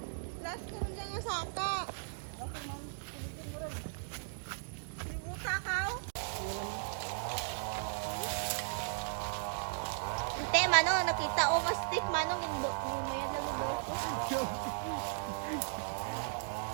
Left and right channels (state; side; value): silent; left; digital silence